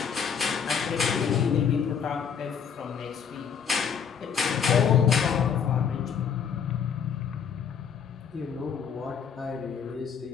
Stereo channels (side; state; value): right; quieter; 7.2 dB